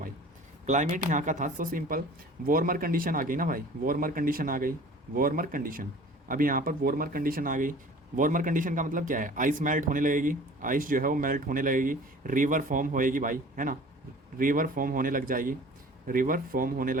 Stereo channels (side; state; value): both; normal; correlation 0.45